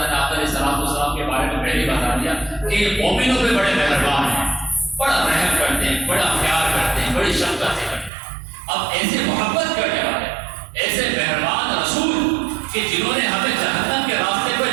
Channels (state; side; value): drops out; left; at 8.1 s